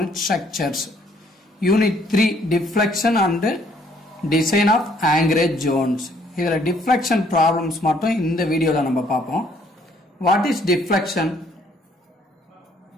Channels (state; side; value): normal; both; correlation 0.64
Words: structures unit 3 deflection and design of anchorage zones. இதுல டிஃப்ளெக்ஷன் ப்ராப்ளம்ஸ் மட்டும் இந்த வீடியோல நம்ம பார்ப்போம். What is deflection?